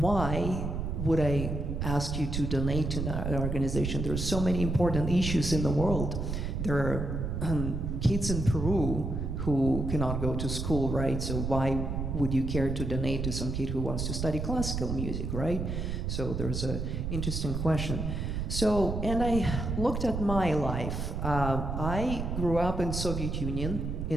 would I ask you to donate to an organization? There are so many important issues in the world. There are kids in Peru who cannot go to school, right? So why would you care to donate to some kid who wants to study classical music, right? So there's an interesting question. So, and I looked at my life. I grew up in Soviet Union,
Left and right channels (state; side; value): noise; right; rumble, 3 dB below the sound